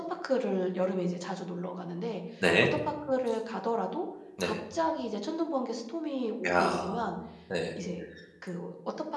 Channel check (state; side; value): identical; both; correlation 1.00